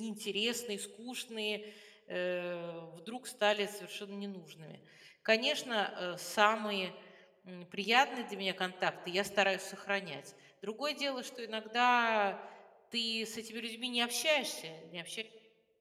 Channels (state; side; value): identical; both; correlation 1.00